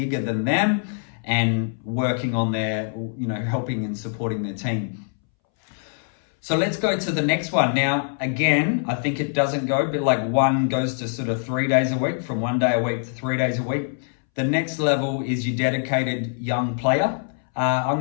than them and working on their, helping and supporting their team. So let's go to the next one. Now, again, I think it doesn't go, but like one goes to sort of 3 days a week, from 1 day a week to 3 days a week. The next level is your dedicated young player. I'm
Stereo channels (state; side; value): silent; right; 63 dB below the other